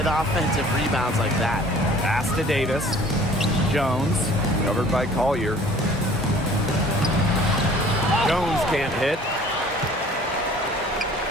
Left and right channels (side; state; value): both; normal; correlation 0.51